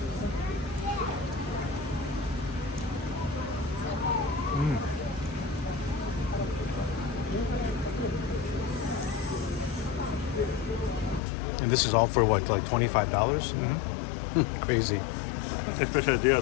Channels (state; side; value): drops out; right; at 11.2 s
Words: And this is all for what, like $25? Crazy. Especially they are